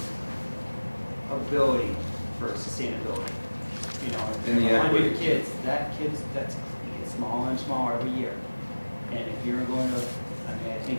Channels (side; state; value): both; inverted; correlation -1.00